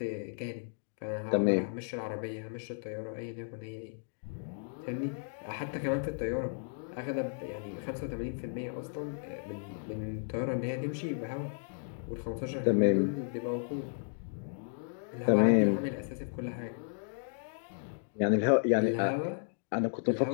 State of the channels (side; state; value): right; silent; digital silence